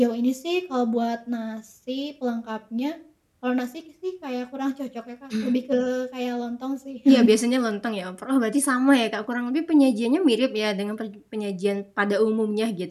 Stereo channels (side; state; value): both; identical; correlation 1.00